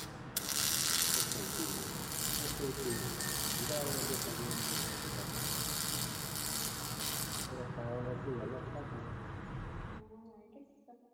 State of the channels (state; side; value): identical; both; correlation 1.00